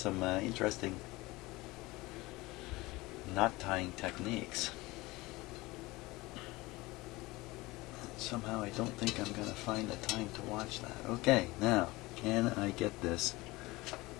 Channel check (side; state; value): right; quieter; 21.3 dB